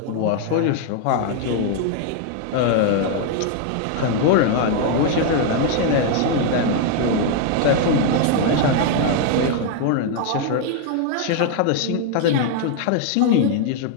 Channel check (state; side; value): different; both; correlation 0.00